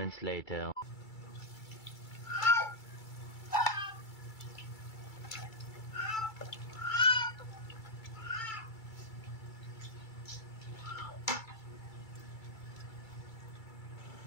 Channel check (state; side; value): late; right; 2.3 ms